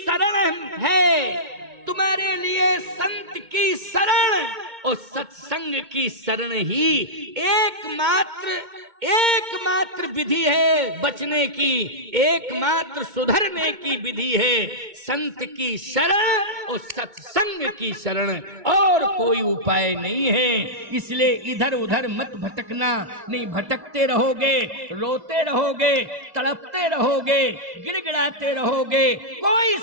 है, तुम्हारे लिए संत की शरण और सत्संग की शरण ही एकमात्र विधि है बचने की, एकमात्र सुधरने की विधि है। संत की शरण और सत्संग की शरण, और कोई उपाय नहीं है। इसलिए इधर उधर मत भटकना। नहीं भटकते रहोगे, रोते रहोगे, तड़पते रहोगे, गिड़गिड़ाते रहोगे, कोई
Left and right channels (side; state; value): left; late; 2.2 ms